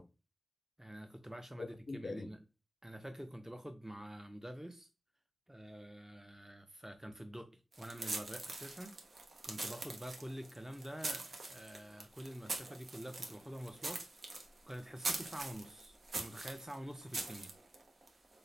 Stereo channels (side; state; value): both; normal; correlation 0.94